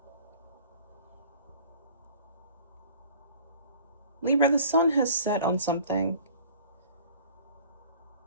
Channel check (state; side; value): inverted; both; correlation -0.49